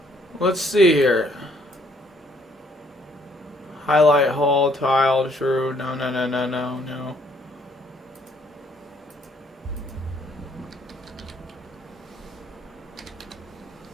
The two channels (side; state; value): both; normal; correlation 0.65